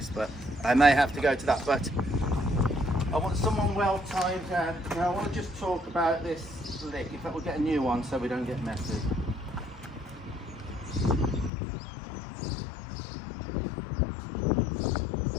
but I may have to go to that. But I want someone well timed down. Now I want to just talk about this lick. In fact, we'll get a new one so we don't get messy.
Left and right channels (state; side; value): drops out; right; at 11.5 s